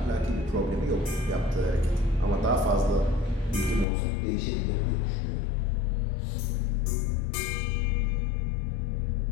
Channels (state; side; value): drops out; right; at 3.9 s